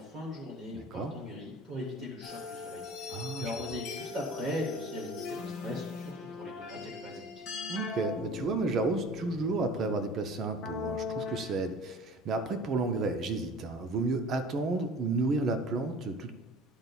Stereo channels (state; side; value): normal; both; correlation 0.43